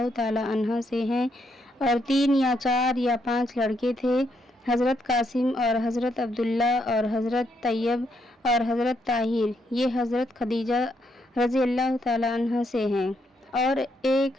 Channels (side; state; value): both; normal; correlation 0.76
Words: تعالی عنہا سے ہیں، اور 3 یا 4 یا 5 لڑکے تھے، حضرت قاسم اور حضرت عبداللہ اور حضرت طیب اور حضرت طاہر، یہ حضرت خدیجہ رضی اللہ تعالی عنہا سے ہیں، اور ایک